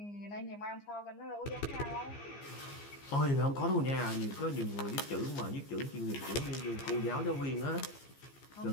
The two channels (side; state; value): right; late; 15 ms